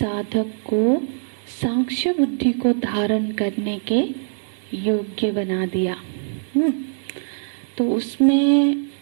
को सांख्य बुद्धि को धारण करने के योग्य बना दिया। तो उसमें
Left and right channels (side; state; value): left; silent; digital silence